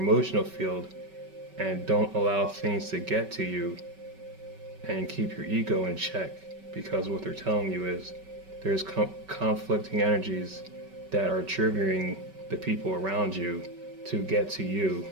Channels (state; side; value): late; left; 5.2 ms